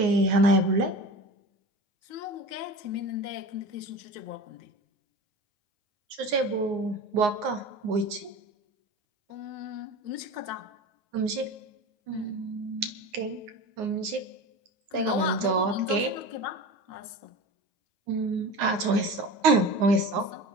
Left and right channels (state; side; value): late; left; 9.6 ms